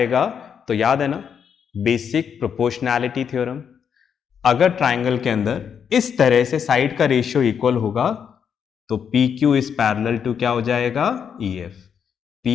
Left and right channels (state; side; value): quieter; right; 7.5 dB